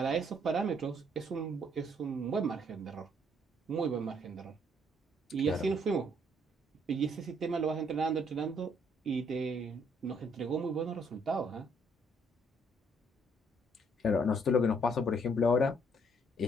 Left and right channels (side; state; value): both; normal; correlation 0.67